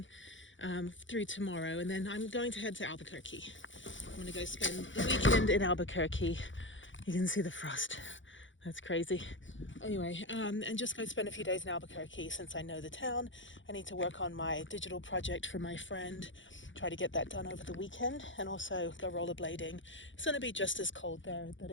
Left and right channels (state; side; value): late; right; 0.56 ms